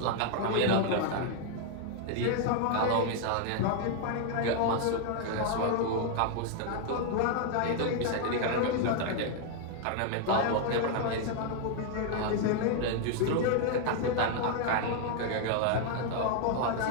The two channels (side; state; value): both; different; correlation 0.00